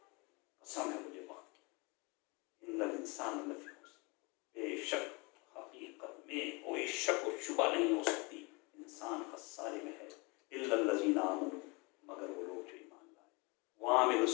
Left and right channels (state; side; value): quieter; right; 28.4 dB